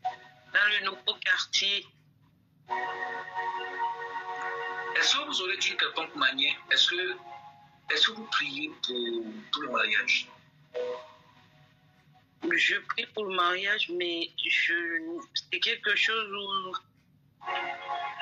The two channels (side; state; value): both; identical; correlation 1.00